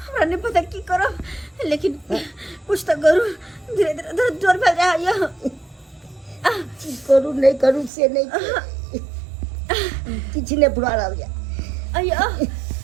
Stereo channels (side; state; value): left; drops out; at 7.9 s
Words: नहीं पता की करो लेकिन कुछ तो करूं धीरे धीरे दर्द जोर भेल जाए या करू नहीं करू से नहीं किछ नहीं बुरा रह गया अया